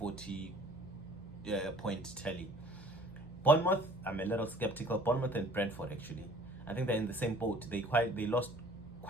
point tally. Bournemouth, I'm a little skeptical. Bournemouth and Brentford, actually, I think they're in the same boat. They lost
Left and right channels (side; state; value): right; noise; hum, 19 dB below the sound